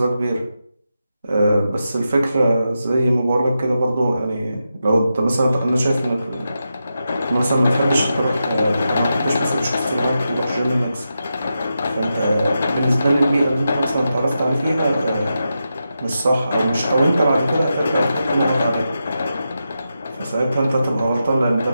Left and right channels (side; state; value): both; inverted; correlation -0.88